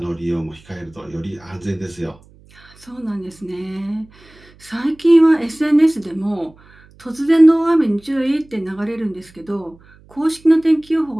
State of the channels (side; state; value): right; noise; hum, 27 dB below the sound